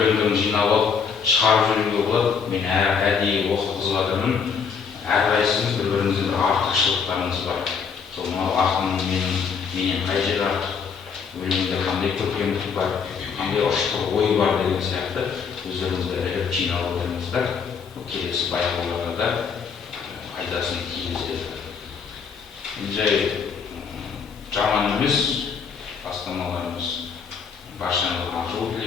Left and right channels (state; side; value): quieter; right; 6.1 dB